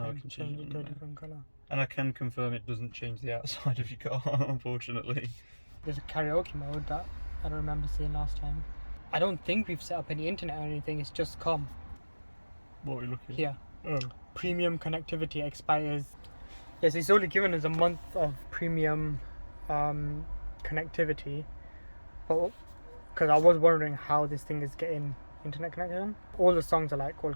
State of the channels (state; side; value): inverted; both; correlation -1.00